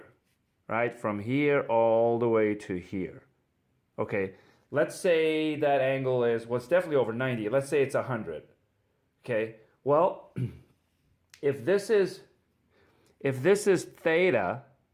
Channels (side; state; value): both; identical; correlation 1.00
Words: right? From here all the way to here. Okay, let's say that angle is, well, it's definitely over 90. Let's say it's 100. Okay, well, if this is theta,